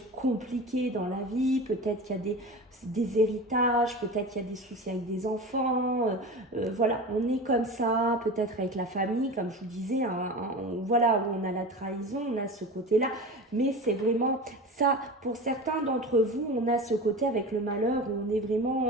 compliquées dans la vie, peut-être qu'il y a des héritages, peut-être qu'il y a des soucis avec des enfants, voilà, on est comme ça, peut-être avec la famille, comme je vous disais, hein, voilà, où on a la trahison, on a ce côté-là, mais c'est vraiment ça, pour certains d'entre vous, on a ce côté avec le malheur où on est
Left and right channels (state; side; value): normal; both; correlation 0.31